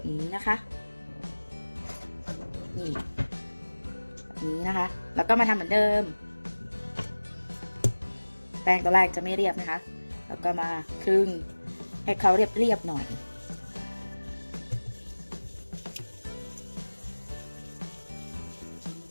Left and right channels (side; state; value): both; inverted; correlation -1.00